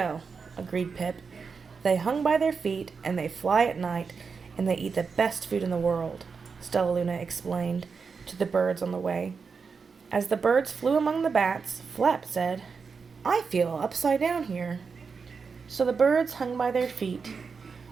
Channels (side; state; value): left; quieter; 5.3 dB